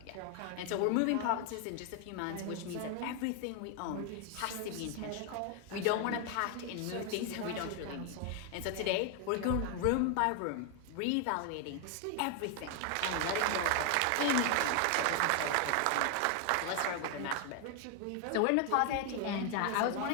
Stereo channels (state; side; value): different; both; correlation 0.00